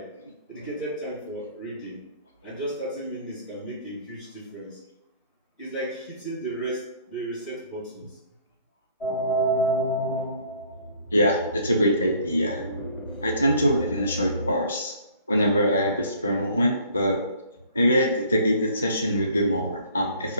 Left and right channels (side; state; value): both; inverted; correlation -0.56